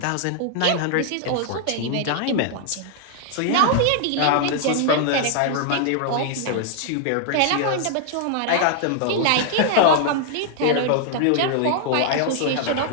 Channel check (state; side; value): different; both; correlation -0.01